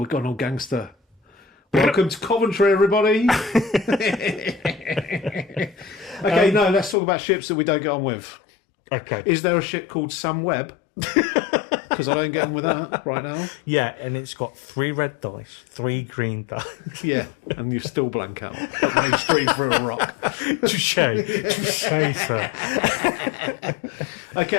got an old gangster. Welcome to Coventry, everybody. Okay, no, let's talk about ships that we don't get on with. Okay. Is there a ship called Sam Webb? Because I don't get on with that right now. Yeah, and it's got 3 red dice, 3 green dice. Yeah, and you still blank out. Put those 3 through a rock. Touche, sir.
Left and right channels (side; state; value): right; drops out; at 7.0 s